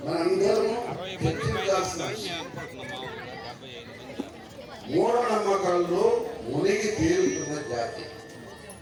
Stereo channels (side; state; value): both; identical; correlation 1.00